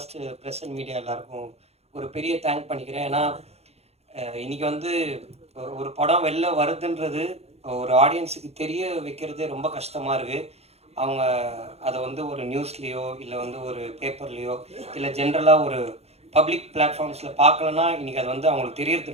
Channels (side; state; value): left; late; 0.30 ms